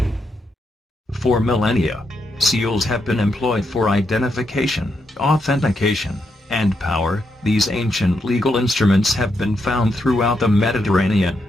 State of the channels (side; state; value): both; normal; correlation 0.81